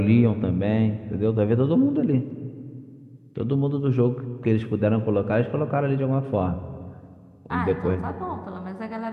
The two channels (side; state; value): both; identical; correlation 1.00